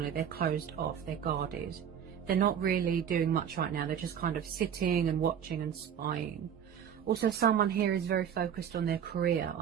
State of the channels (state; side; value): quieter; left; 8.6 dB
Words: They're closed off, they're guarded. They're not really doing much right now. They're just kind of sitting and watching and spying. Also, someone here is very focused on their career,